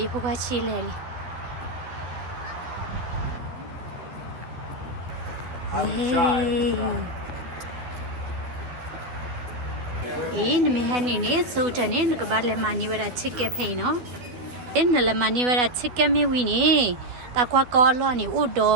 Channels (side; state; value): left; late; 12 ms